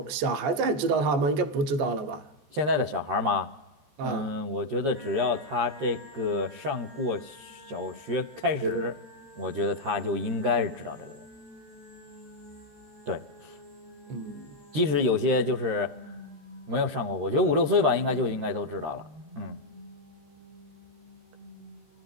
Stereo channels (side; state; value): left; late; 13 ms